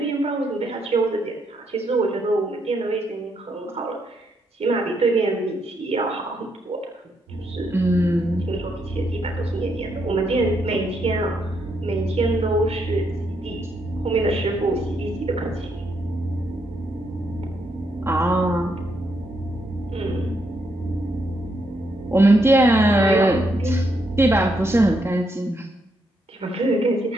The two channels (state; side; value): normal; both; correlation 0.77